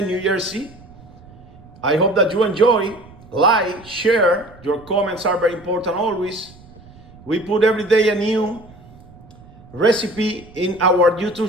New Jersey. I hope that you enjoy. Like, share. Your comments are very important always. We put every day a new recipe in our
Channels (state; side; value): noise; right; rumble, 22 dB below the sound